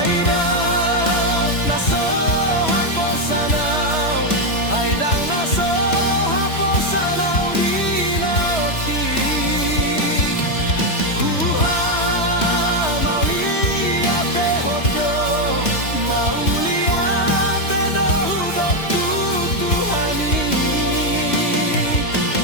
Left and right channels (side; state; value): right; late; 3.1 ms